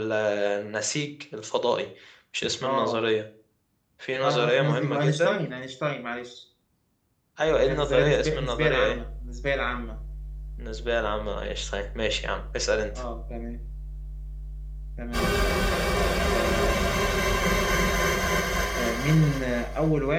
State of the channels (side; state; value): both; identical; correlation 1.00